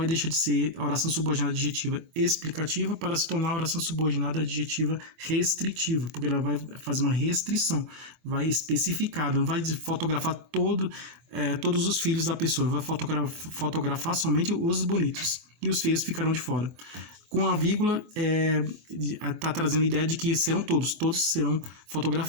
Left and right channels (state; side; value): late; left; 24 ms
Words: deixar de ser a oração subordinada adjetiva explicativa para se tornar a oração subordinada adjetiva restritiva, porque ela vai fazer uma restrição, vai especificar, não vai fotografar todos os filhos da pessoa, vai fotografar somente os bonitos, e os feios ficarão de fora. Com a vírgula, está trazendo a ideia de que todos serão